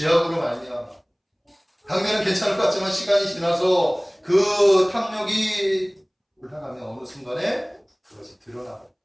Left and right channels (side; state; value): both; identical; correlation 1.00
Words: 말미암아. 당면은 괜찮을 것 같지만 시간이 지나서 그 탐욕이 올라가면 어느 순간에 그것이 드러나고